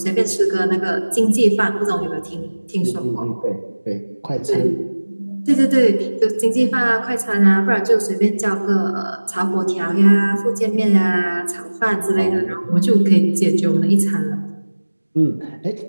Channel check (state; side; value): inverted; both; correlation -1.00